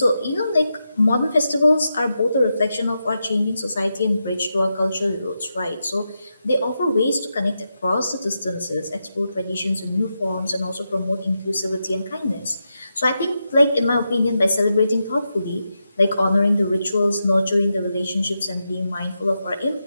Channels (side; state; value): both; inverted; correlation -0.87